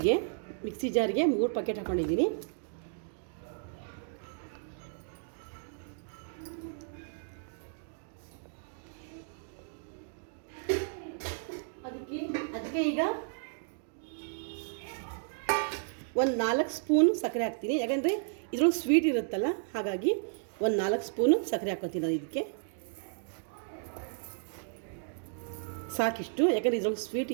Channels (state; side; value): silent; left; digital silence